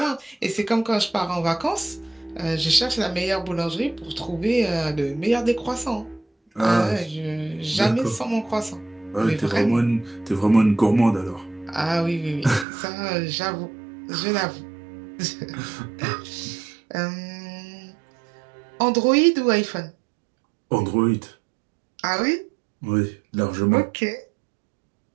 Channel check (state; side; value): drops out; left; at 12.7 s